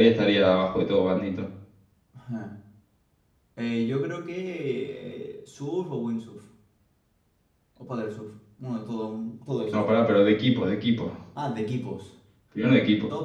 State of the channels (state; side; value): identical; both; correlation 1.00